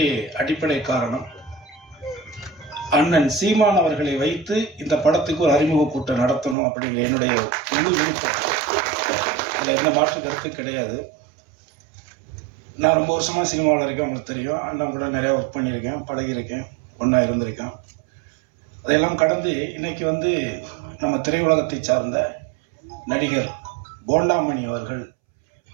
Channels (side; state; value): left; drops out; at 6.6 s